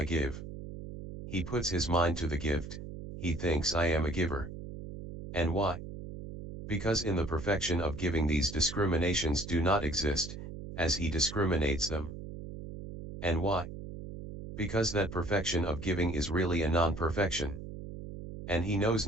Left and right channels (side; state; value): right; noise; hum, 10 dB below the sound